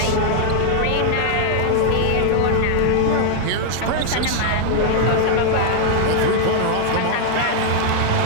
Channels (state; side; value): different; both; correlation -0.01